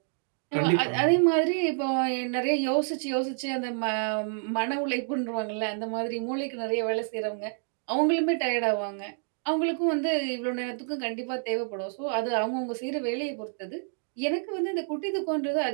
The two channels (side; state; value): left; silent; 59 dB below the other